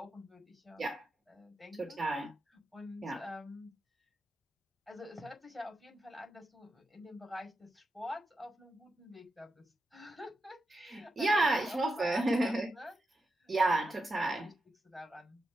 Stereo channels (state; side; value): normal; both; correlation 0.88